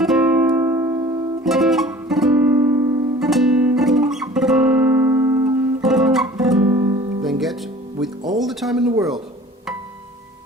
Then get, with all the time in the world.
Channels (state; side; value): normal; both; correlation 0.46